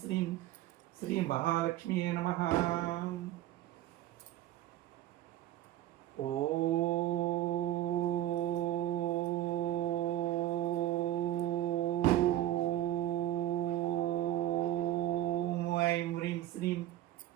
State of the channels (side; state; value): left; quieter; 13.5 dB